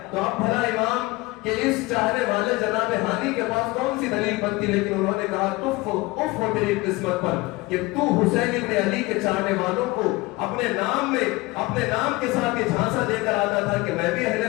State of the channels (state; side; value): quieter; right; 22.0 dB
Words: تو اب بھلا امام کہ اس چاہنے والے جناب ہانی کے پاس کون سی دلیل بنتی، لیکن انہوں نے کہا اف ہو تیری قسمت پر کہ تو حسین ابن علی کے چاہنے والوں کو اپنے نام میں اپنے نام کے ساتھ یہ جھانسا دے کر آتا تھا کہ میں بھی اہل